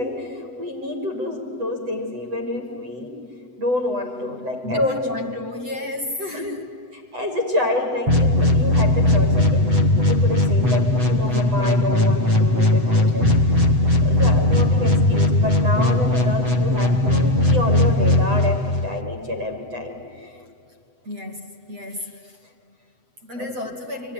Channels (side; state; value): left; late; 8.0 ms